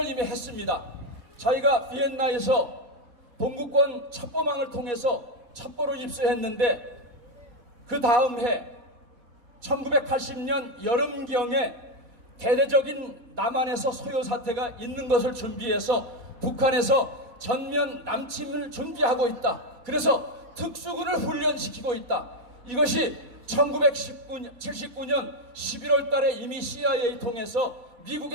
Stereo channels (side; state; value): left; late; 4.1 ms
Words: 이미 했습니다. 자기가 비엔나에서 동구권 첩보망을 통해서 첩보를 입수했는데 그 다음 해 1980년 여름경에 대대적인 남한에서 소요 사태가 있는 것을 준비해서 북한에서 전면 남침을 준비하고 있다. 그래서 특수군을 훈련시키고 있다. 이것이 1979년 11월 달에 이미 CIA 통해서